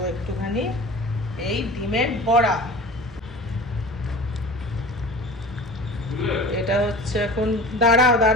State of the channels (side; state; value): both; normal; correlation 0.38